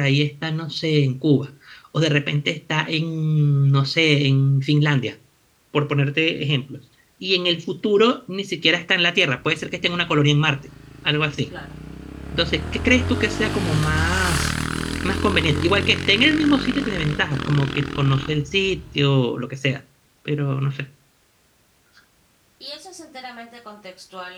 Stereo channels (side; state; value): both; identical; correlation 1.00